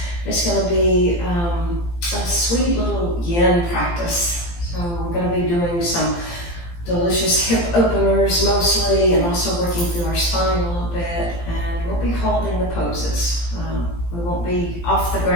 is going to be a sweet little yin practice. So we're going to be doing some delicious hip openers mostly, and also working through our spine a little bit, and we'll be holding the poses. We won't be off the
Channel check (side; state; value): right; late; 17 ms